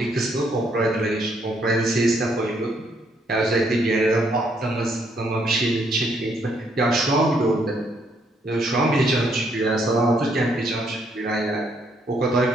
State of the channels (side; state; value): both; normal; correlation 0.71